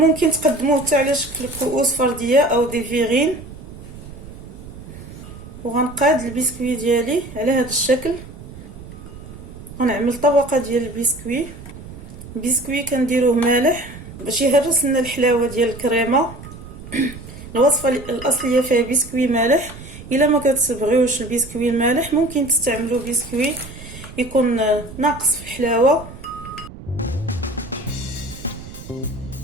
تقدموه حتى على شكل كؤوس فرديه او دي فيغين. وغنقاد البسكوي ديالي على هذا الشكل. غنعمل طبقه ديال البسكوي كنديروه مالح باش يهرس لنا الحلاوه ديال الكريمه. الوصفه الاصليه فيها بسكوي مالح. الا ما كتبغيوش البسكوي المالح ممكن تستعملوا بسكوي يكون ناقص في الحلاوه.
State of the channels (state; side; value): noise; right; rumble, 15 dB below the sound